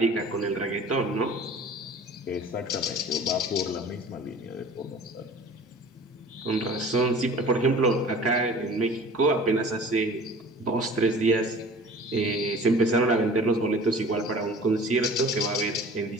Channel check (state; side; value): normal; both; correlation 0.44